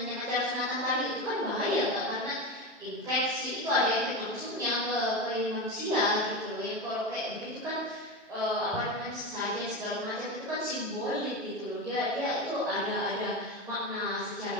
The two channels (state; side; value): normal; both; correlation 0.20